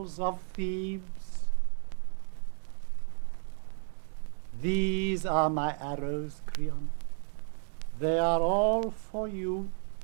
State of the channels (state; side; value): silent; left; 56 dB below the other